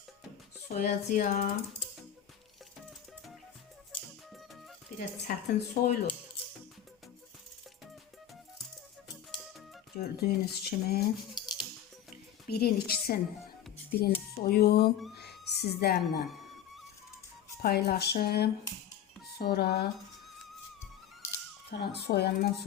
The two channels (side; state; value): right; quieter; 10.1 dB